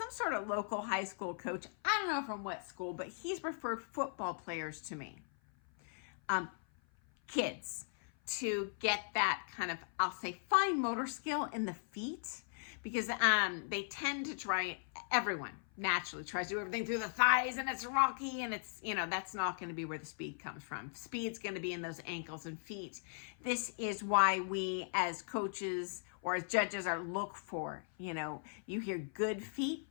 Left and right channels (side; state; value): right; silent; 52 dB below the other